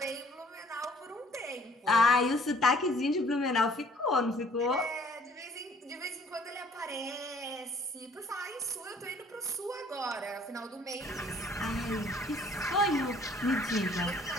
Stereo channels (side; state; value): both; normal; correlation 0.57